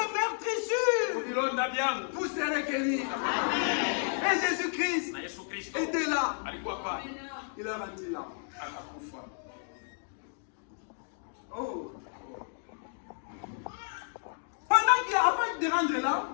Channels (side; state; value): right; silent; 56 dB below the other